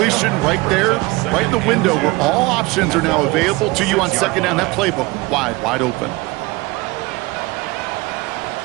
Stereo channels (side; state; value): left; quieter; 22.6 dB